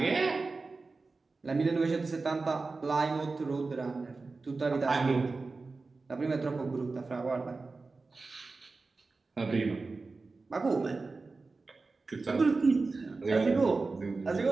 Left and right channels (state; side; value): quieter; left; 3.9 dB